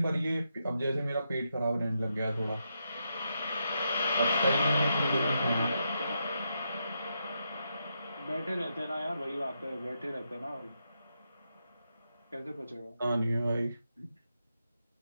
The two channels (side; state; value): both; inverted; correlation -0.83